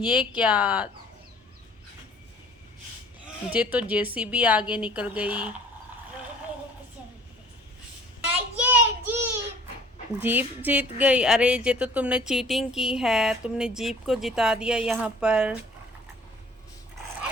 क्या, ये तो जेसीबी आगे निकल गई। ये जीप जीप जीत गई। अरे ये तो तुमने चीटिंग की है, तुमने जीप को जिता दिया यहाँ पर।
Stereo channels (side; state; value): both; normal; correlation 0.51